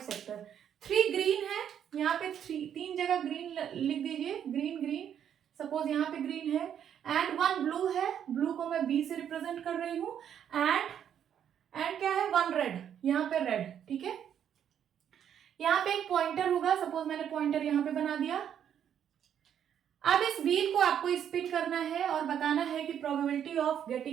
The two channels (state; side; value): quieter; left; 9.2 dB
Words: sector. 3 green है, यहाँ पे 3 जगह ग्रीन लिख दीजिए, ग्रीन, सपोज यहाँ पे ग्रीन है, एंड 1 ब्लू है, ब्लू को मैं बी से रिप्रेजेंट कर रही हूँ, एंड क्या है? 1 रेड, यहाँ पे रेड, ठीक है। यहाँ पे एक पॉइंटर होगा, सपोज मैंने पॉइंटर यहाँ पे बना दिया। अब इस व्हील को आपको स्पिन करना है और बताना है कि probability of